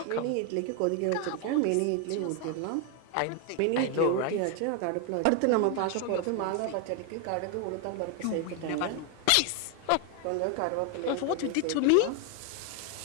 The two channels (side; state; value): both; different; correlation 0.01